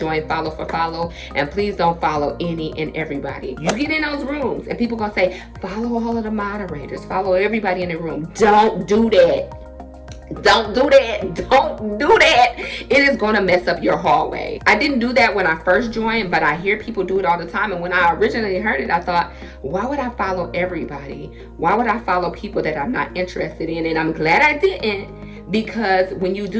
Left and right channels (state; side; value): identical; both; correlation 1.00